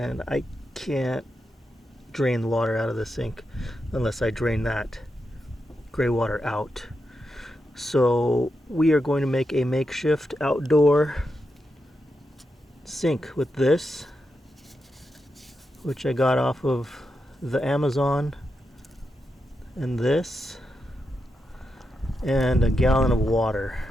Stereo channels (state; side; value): normal; both; correlation 0.86